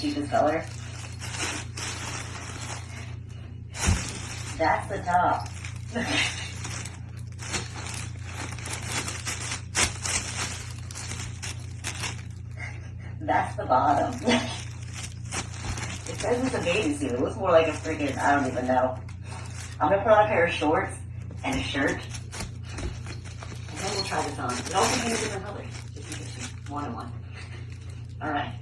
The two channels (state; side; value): identical; both; correlation 1.00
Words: color. That's the top. That's the bottom. It says it's a bathing suit. It looks more like a freaking, I don't even know. I'm gonna put on a pair of shorts and a shirt. And then we'll try this on. It also came in different colors. Just in case you wanted one. Alright.